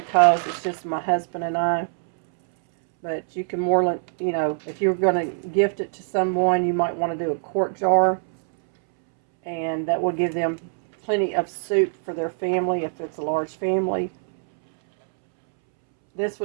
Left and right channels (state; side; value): silent; left; 63 dB below the other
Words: it's just my husband and I. But you can more, you know, if you're going to gift it to someone, you might want to do a quart jar. And that will give them plenty of soup for their family if it's a large family. This